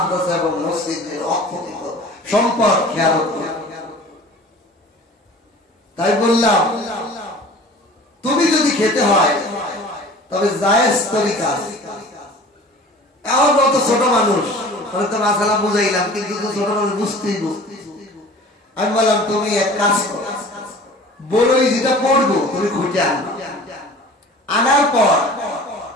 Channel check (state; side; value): normal; both; correlation 0.43